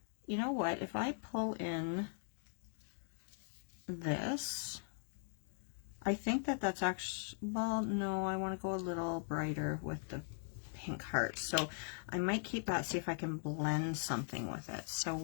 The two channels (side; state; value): right; silent; digital silence